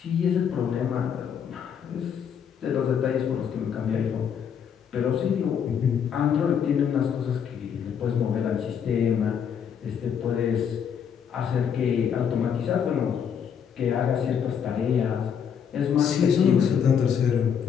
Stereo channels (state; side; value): quieter; right; 7.8 dB